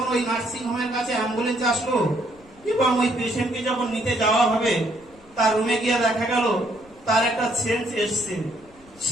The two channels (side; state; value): left; noise; rumble, 27 dB below the sound